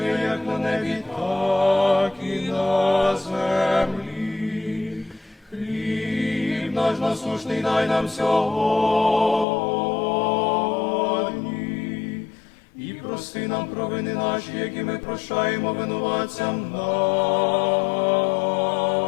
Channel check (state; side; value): drops out; right; at 9.5 s